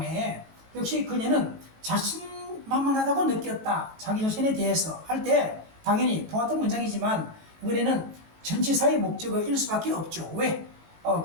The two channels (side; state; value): left; late; 18 ms